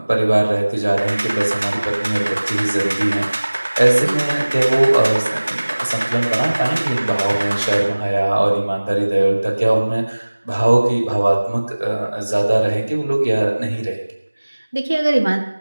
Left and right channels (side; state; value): both; inverted; correlation -1.00